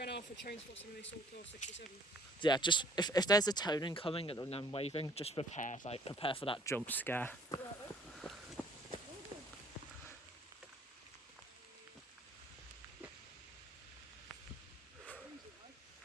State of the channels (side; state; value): both; normal; correlation 0.57